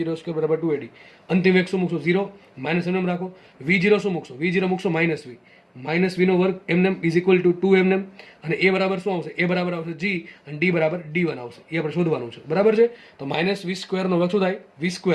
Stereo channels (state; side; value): identical; both; correlation 1.00